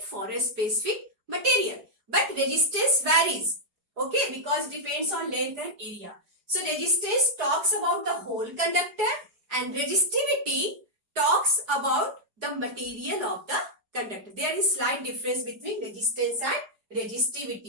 a specific material. But resistance varies. Okay, because it depends on length and area. So resistance talks about the whole conductor and resistivity talks about the material of the conductor. There is slight difference between resistance and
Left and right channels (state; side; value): late; left; 4.8 ms